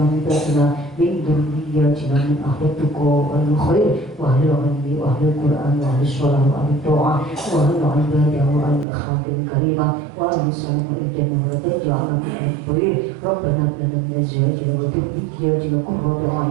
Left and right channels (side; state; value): left; drops out; at 8.8 s